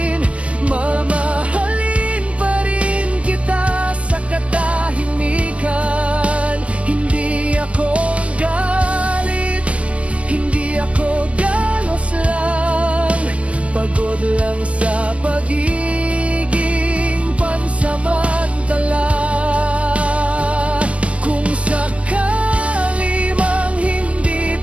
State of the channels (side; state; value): left; late; 0.062 ms